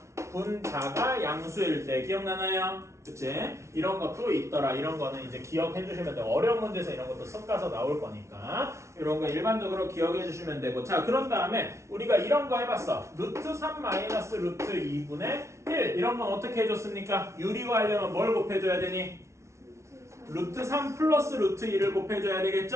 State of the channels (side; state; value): left; late; 0.13 ms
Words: 분자가 양수일 때 기억나나요? 그치? 이런 것도 있더라. 이런 거는 이제 기억해 주시면 돼요. 어려운 문제에서 이런 것도 섞어서 나올 거니까 이런 거 일반적으로 기억해 주시면 되고. 자, 그런 다음에 우리가 이런 거 해봤어. 루트 3 마이너스 루트 2분의 1 이런 건 어떻게 해줬습니까? 유리화하려면 뭘 곱해줘야 되니? 루트 3 플러스 루트 2를 곱해줘야